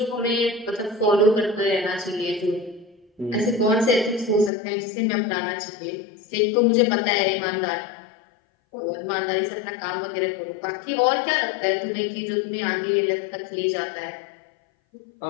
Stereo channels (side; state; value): right; drops out; at 4.5 s